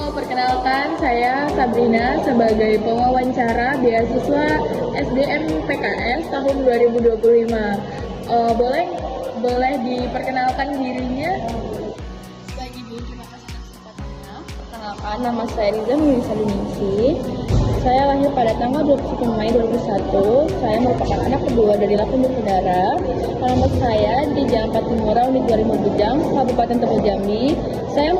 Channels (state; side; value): identical; both; correlation 1.00